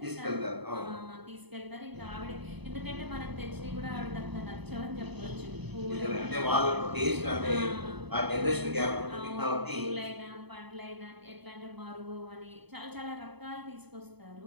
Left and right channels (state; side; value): late; left; 0.99 ms